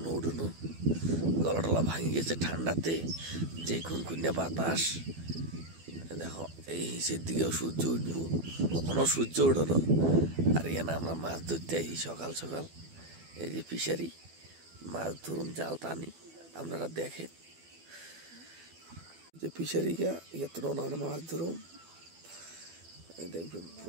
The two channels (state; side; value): late; left; 12 ms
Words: ওঠানো, গলা টলা ভাঙে গেছে ঠান্ডাতে, যে খুনখুনিয়া বাতাস। দেখো এই হিসের দিকেও সূর্য উঠবো, কোনো সূর্য ওঠানো। আর এখানে আমরা মাছ ধরতে আসি সকাল সকাল। এই যে ফিশারি, মাছ ধরুন জাল টানি, আপনারা দেখেন যে ফিশারিটা এত আমরা মাছ ধরুন। দেখবেন